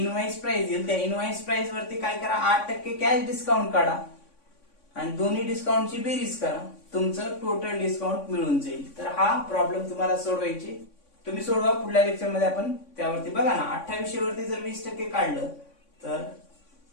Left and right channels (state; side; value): late; right; 3.5 ms